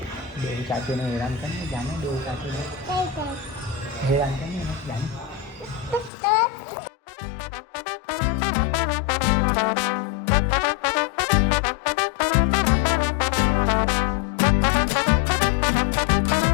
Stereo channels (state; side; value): drops out; right; at 6.1 s